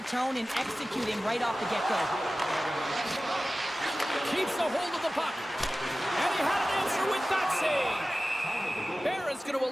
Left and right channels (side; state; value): both; normal; correlation 0.96